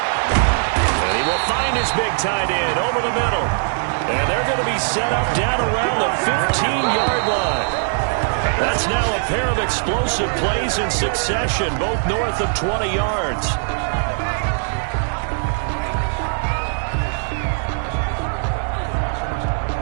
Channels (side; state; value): left; silent; digital silence